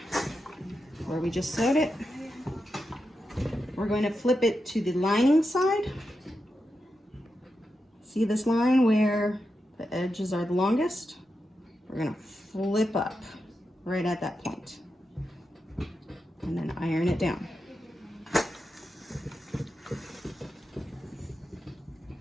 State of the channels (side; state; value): both; normal; correlation 0.88